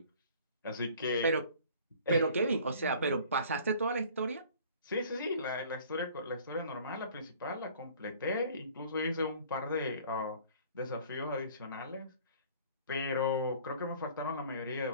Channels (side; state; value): both; inverted; correlation -0.51